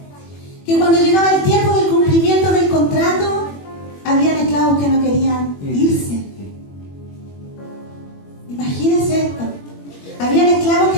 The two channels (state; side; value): late; right; 21 ms